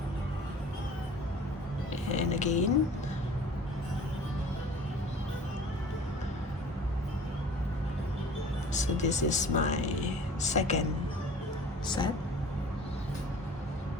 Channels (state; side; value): normal; both; correlation 0.46